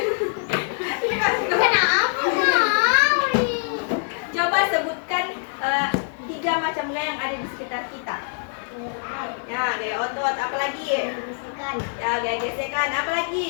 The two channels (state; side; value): silent; right; 63 dB below the other